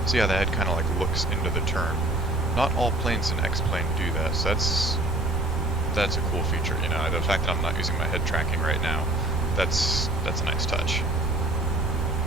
See how the head kind of like looks into the turn. Not all planes in X-plane do that, so that's a cool feature, you know. The fact that I'm not using my head tracking right now, that's a nice touch.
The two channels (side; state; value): right; noise; rumble, 2 dB below the sound